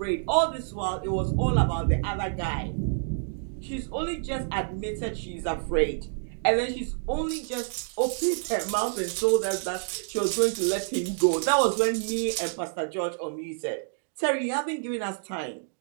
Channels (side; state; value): left; silent; digital silence